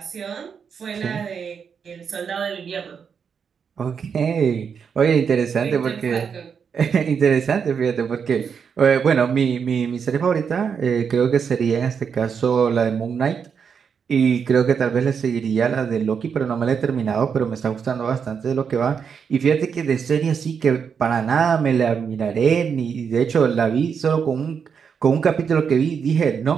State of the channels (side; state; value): left; quieter; 6.6 dB